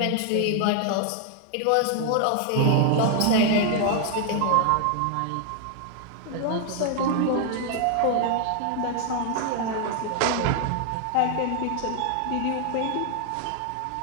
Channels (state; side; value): different; both; correlation 0.00